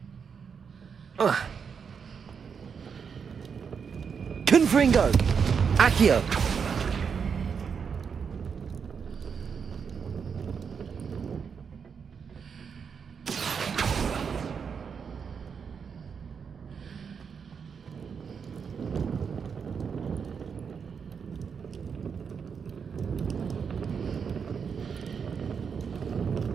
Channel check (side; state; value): left; quieter; 6.4 dB